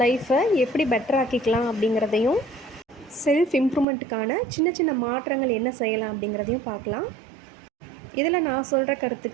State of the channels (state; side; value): drops out; left; at 3.9 s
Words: லைஃப்பை எப்படி பெட்டர் ஆக்கிக்கலாம் அப்படிங்கிறதையும், செல்ஃப் இம்ப்ரூவ்மெண்ட்டுக்கான சின்ன சின்ன மாற்றங்கள் என்ன செய்யலாம் அப்படிங்கிறதையும் பார்க்கலாம். இதில் நான் சொல்கிற